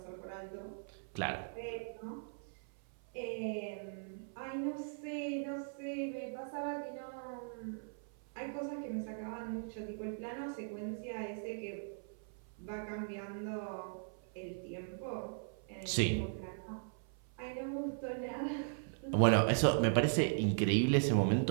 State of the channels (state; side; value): silent; left; 52 dB below the other